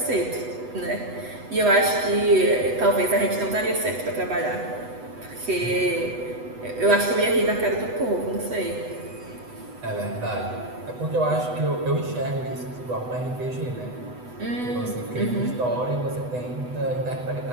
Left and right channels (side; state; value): left; late; 8.0 ms